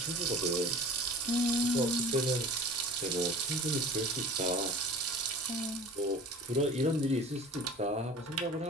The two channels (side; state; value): both; normal; correlation 0.41